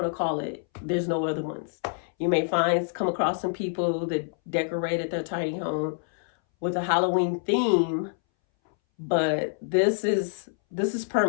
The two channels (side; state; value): right; silent; 60 dB below the other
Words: to call it. There's no other ones. You may come across some people that decorated their tiny home with a Halloween theme, but this is